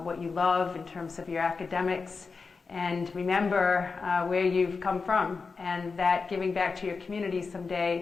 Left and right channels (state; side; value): quieter; right; 4.6 dB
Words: what you love in terms of your academics, and remember where you've come from, and that giving back to your community